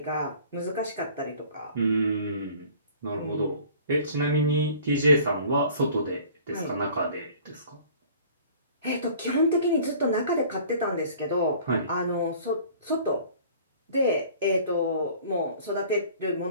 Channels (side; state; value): both; inverted; correlation -0.49